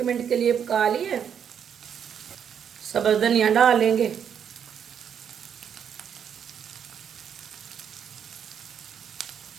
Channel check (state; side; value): quieter; left; 8.1 dB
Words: मिनट के लिए पका लिए। सब्ज़ धनिया डाल लेंगे।